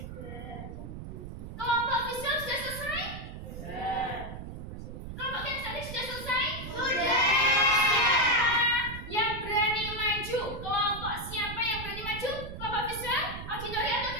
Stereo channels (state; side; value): noise; right; rumble, 9 dB below the sound